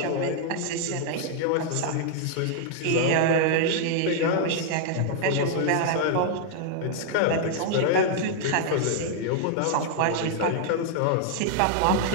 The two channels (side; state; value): both; different; correlation 0.00